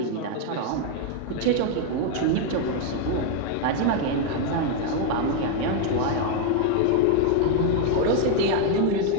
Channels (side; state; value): both; different; correlation 0.01